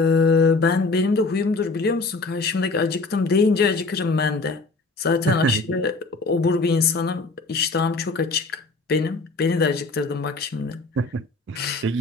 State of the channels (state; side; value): quieter; right; 3.5 dB